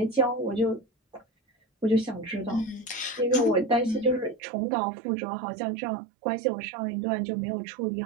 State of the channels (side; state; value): left; drops out; at 4.4 s